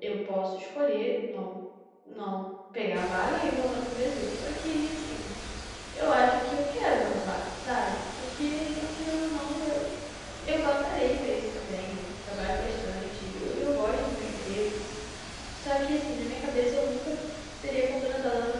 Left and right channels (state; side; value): identical; both; correlation 1.00